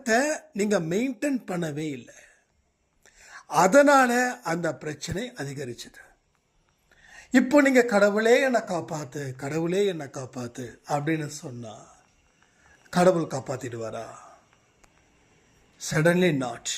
நீங்கள் மெயின்டைன் பண்ணவே இல்லை. அதனால அந்த பிரச்சனை அதிகரிச்சது. இப்போ நீங்கள் கடவுளே என்னை காப்பாற்று, கடவுளே என்னை காப்பாற்று அப்படின்னு சொன்னால் கடவுள் காப்பாற்றிடுவாரா? Suddenly not.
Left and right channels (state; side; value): identical; both; correlation 1.00